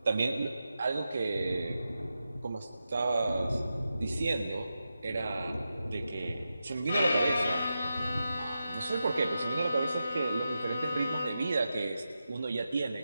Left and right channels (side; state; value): both; inverted; correlation -0.90